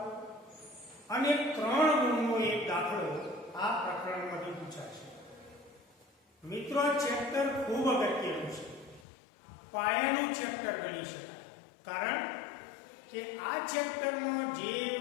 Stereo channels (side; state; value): right; drops out; at 9.1 s